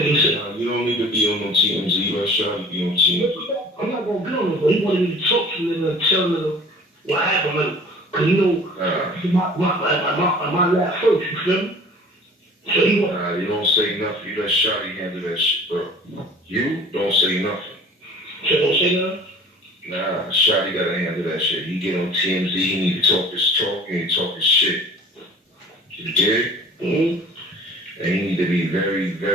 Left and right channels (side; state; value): both; normal; correlation 0.46